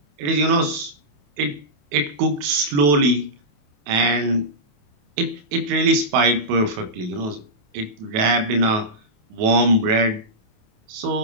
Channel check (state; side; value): late; left; 28 ms